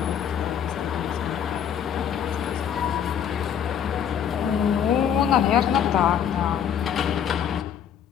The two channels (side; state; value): right; quieter; 8.8 dB